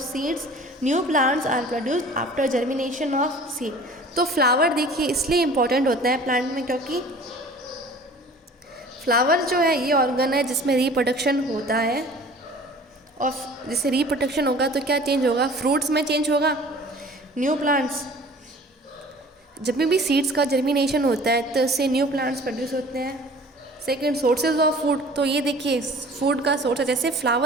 seeds. New plants are produced after germination of seed. तो flower देखिए इसलिए इम्पॉर्टेंट होता है प्लांट में क्योंकि फ्लावर जो है ये ऑर्गन है जिसमें रिप्रोडक्शन होता है, और जैसे रिप्रोडक्शन होगा तो क्या चेंज होगा? फ्रूट्स में चेंज होगा। न्यू प्लांट्स, जब भी सीड्स का जर्मिनेशन होता है तो इससे न्यू प्लांट्स प्रोड्यूस होते हैं। सेकेंड, सोर्सेज ऑफ फूड, तो ये देखिए फूड का सोर्स है, जैसे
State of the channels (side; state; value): both; normal; correlation 0.46